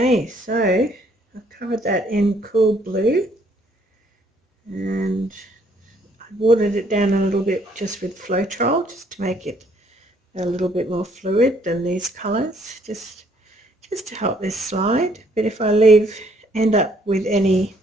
Okay, so I've covered that in cool blue, and I watered it down a little bit just with Floetrol, just to make it a little bit more fluid than these colours, just to help this slide. But if I end up with any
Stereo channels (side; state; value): both; normal; correlation 0.66